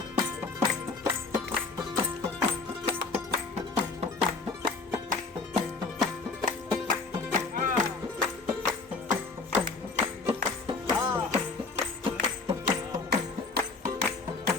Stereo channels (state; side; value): quieter; right; 4.1 dB